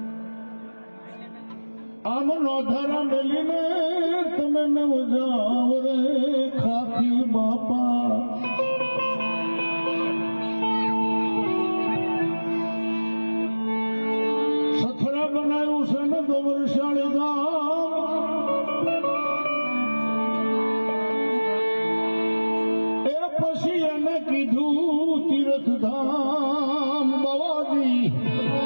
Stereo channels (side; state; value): both; inverted; correlation -1.00